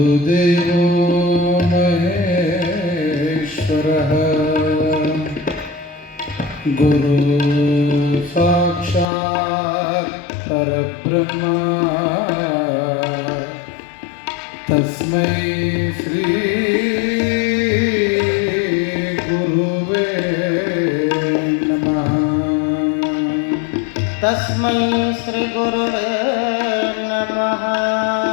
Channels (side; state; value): right; drops out; at 9.1 s